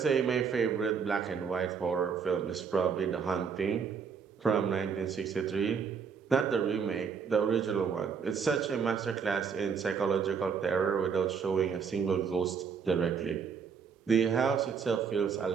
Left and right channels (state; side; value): quieter; left; 6.3 dB